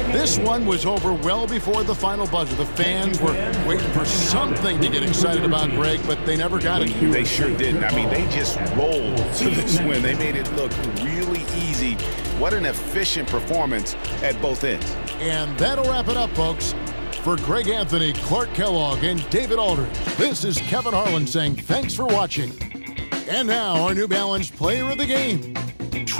This one was over well before the final buzzer. The fans were waiting for something to get excited about, Greg, but they never got it. They sure didn't. I mean, they just rolled to this win. They made it look really easy. What an efficient performance at both ends. And that'll wrap it up, folks. For Greg Anthony, Clark Kellogg, and David Aldridge, this is Kevin Harlan saying thanks for watching. And now our New Balance player of the game,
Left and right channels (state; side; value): inverted; both; correlation -1.00